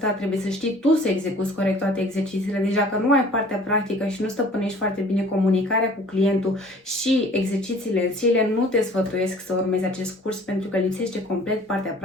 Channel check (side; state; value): both; normal; correlation 0.50